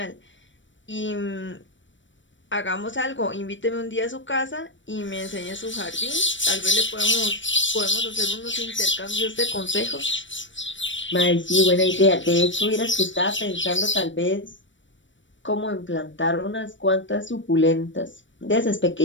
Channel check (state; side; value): late; right; 0.55 ms